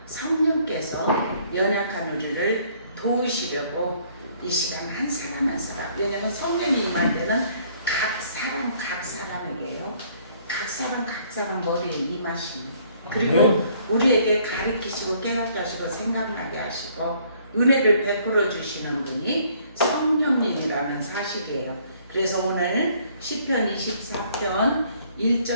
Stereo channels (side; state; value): both; inverted; correlation -0.62